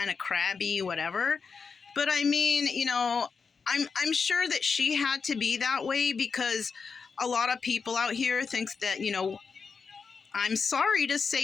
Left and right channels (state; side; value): quieter; right; 5.4 dB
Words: of crabby, whatever. But I mean, I'm sure that she had to be that way because a lot of people out here think that, I'm sorry to